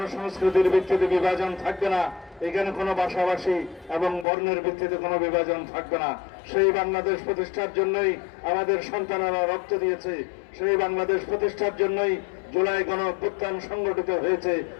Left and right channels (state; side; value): drops out; right; at 4.2 s